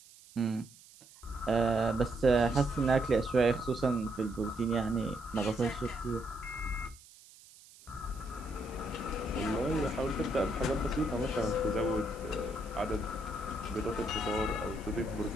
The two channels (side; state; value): right; noise; hiss, 22 dB below the sound